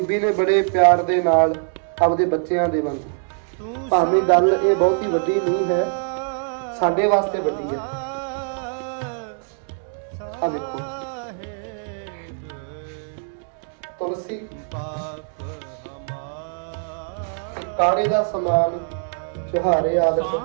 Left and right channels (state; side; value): silent; left; digital silence